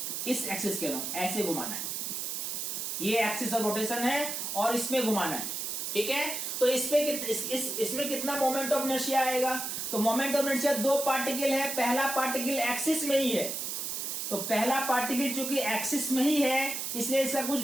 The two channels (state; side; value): noise; right; hiss, 3 dB below the sound